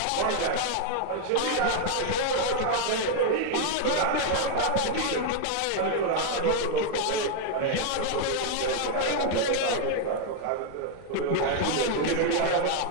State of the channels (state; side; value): different; both; correlation 0.00